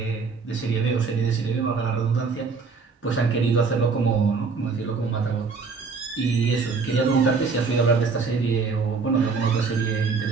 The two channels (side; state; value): left; quieter; 4.8 dB